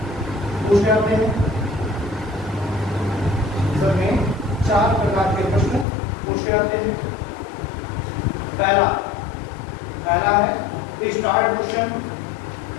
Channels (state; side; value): drops out; right; at 5.9 s